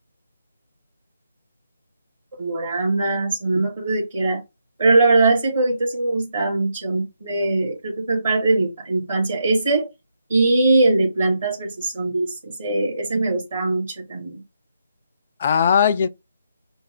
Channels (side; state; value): both; inverted; correlation -0.81